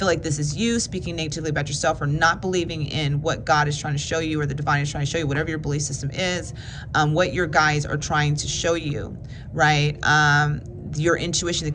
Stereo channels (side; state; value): both; identical; correlation 1.00